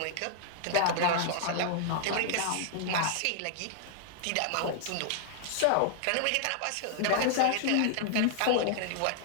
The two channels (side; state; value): both; different; correlation -0.01